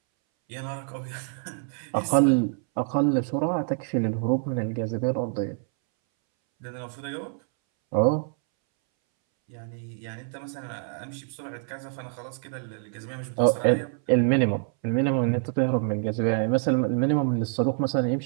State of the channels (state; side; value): silent; left; 61 dB below the other